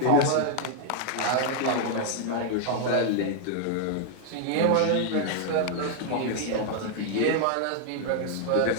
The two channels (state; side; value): different; both; correlation 0.00